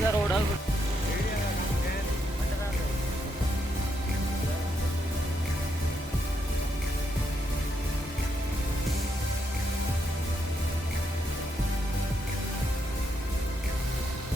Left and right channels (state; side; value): normal; both; correlation 0.79